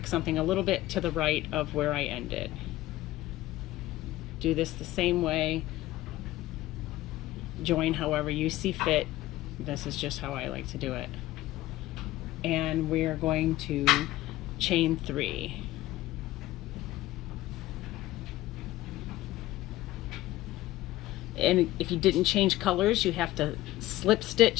something a little bit to the right of where I ended. Do this the same way. Join however you see fit. This is just how I like to do it. And we're going to chain 3. And if you didn't change colors, you have to slip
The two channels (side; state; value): right; quieter; 16.3 dB